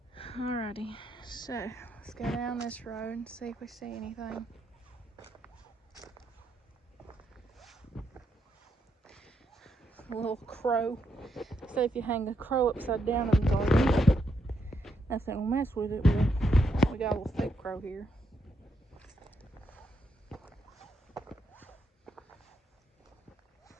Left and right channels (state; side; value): normal; both; correlation 0.79